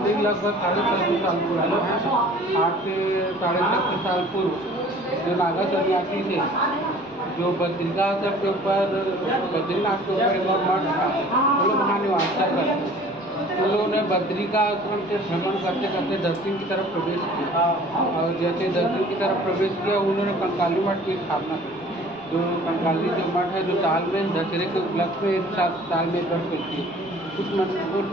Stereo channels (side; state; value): right; noise; rumble, 29 dB below the sound